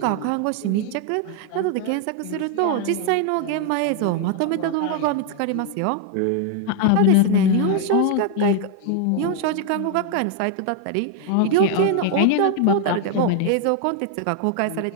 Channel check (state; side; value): different; both; correlation 0.00